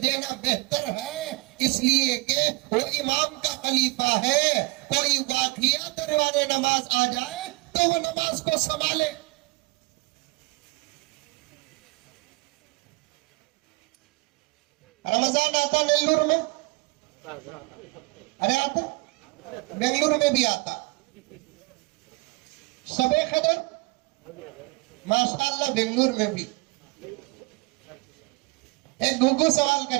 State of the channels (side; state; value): left; quieter; 25.8 dB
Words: دینا بہتر ہے، اس لیے کہ وہ امام کا خلیفہ ہے. کوئی واقعہ دروازے نماز آ جائے تو وہ نماز کو سنبھالے. رمضان آتا نیلور میں، ارے آتا بنگلور میں بھی آتا. شب قدر ماشاءاللہ بنگلور میں بھی. ایک گھگو سوال